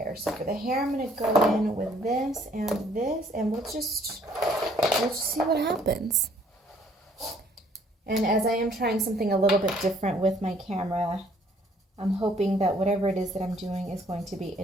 So for the hair, I'm going to go in with this, and we'll just see what happens. And as I am trying something a little bit different with my camera, I'm hoping that whatever it is that I'm doing is going to be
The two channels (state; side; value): normal; both; correlation 0.62